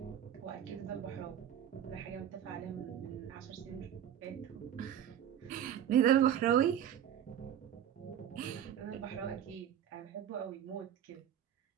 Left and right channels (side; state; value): left; quieter; 10.0 dB